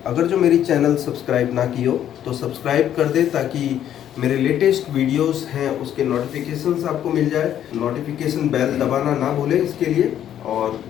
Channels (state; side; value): quieter; right; 10.6 dB